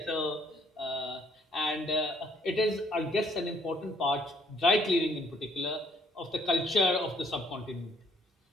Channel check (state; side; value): normal; both; correlation 0.66